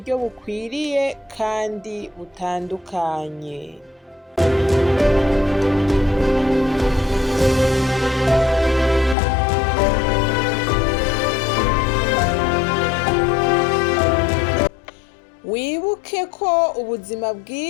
bukwiriye kandi butandukanye. Wibuke ko ubuzima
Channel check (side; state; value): right; drops out; at 9.2 s